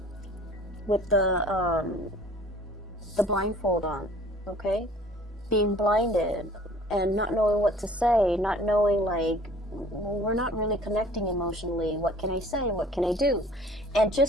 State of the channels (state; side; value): normal; both; correlation 0.51